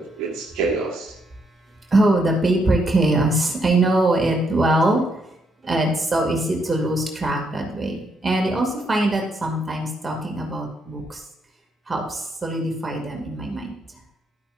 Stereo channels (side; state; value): both; normal; correlation 0.75